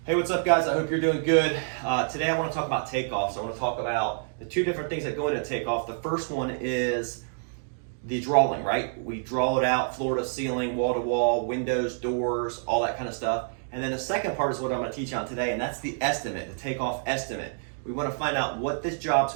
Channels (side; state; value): left; silent; digital silence